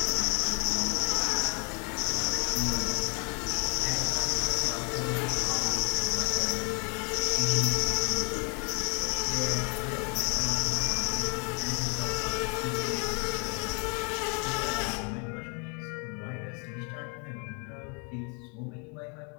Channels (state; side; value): quieter; right; 33.5 dB